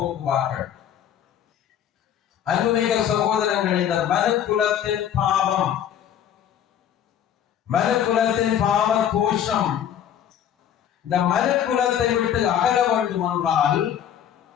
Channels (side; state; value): right; quieter; 9.7 dB